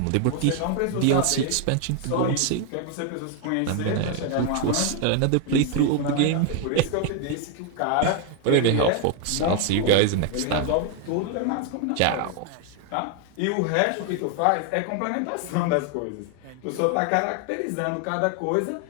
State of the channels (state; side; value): different; both; correlation 0.01